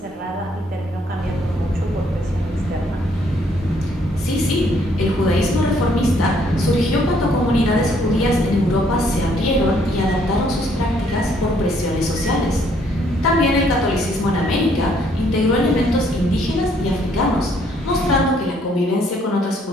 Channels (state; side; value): normal; both; correlation 0.67